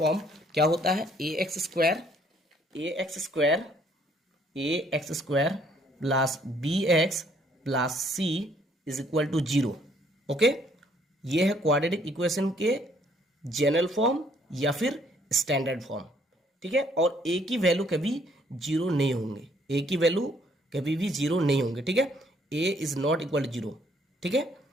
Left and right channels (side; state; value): both; normal; correlation 0.65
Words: क्या होता है, ax² plus bx plus c is equal to 0। Okay, ये है क्वाड्रेटिक इक्वेशन के जनरल फॉर्म या फिर स्टैंडर्ड फॉर्म, ठीक है। और ए की वैल्यू कभी 0 नहीं होंगे, ए की वैल्यू कभी भी 0 नहीं होंगे, ठीक है। ए इज नॉट इक्वल टू 0, ठीक है।